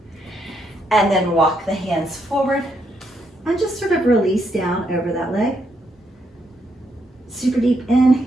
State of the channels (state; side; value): normal; both; correlation 0.77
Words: And then walk the hands forward and just sort of release down over that leg. Super deep